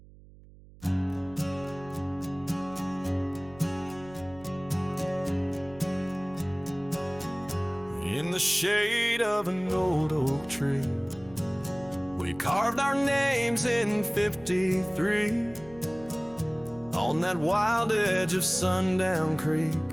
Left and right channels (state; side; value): noise; right; hum, 22 dB below the sound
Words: In the shade of an old oak tree, we carved our names in 53, on that wild edge of Sundown Creek,